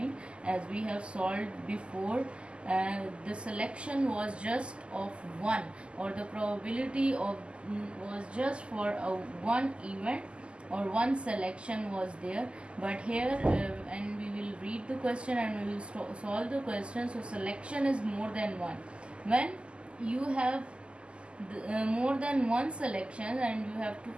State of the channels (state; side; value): late; left; 0.052 ms